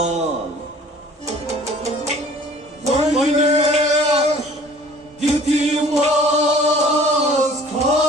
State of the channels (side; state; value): both; normal; correlation 0.50